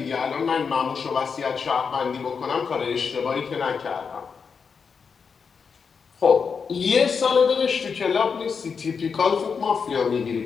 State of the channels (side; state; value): right; quieter; 5.8 dB